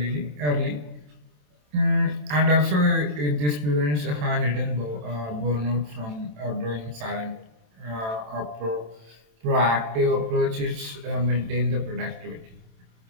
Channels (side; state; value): left; late; 27 ms